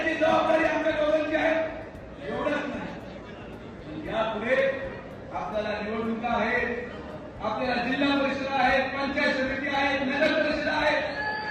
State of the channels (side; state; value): both; identical; correlation 1.00